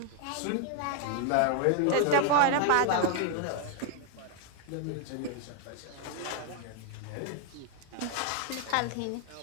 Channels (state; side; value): different; both; correlation 0.00